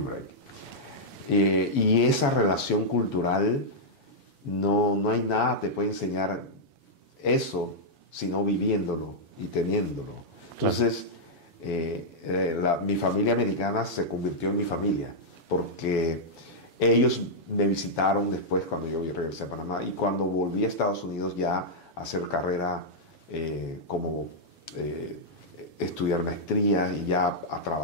Y esa relación cultural, no hay nada te puede enseñar eso, sino viviéndolo y teniéndolo. Entonces, mi familia americana se convirtió en mi familia, porque ellos me visitaron después cuando yo regresé a Panamá, y cuando volví a Estados Unidos ya a hacer carrera como estudiar maestría y ya a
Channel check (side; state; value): right; late; 7.1 ms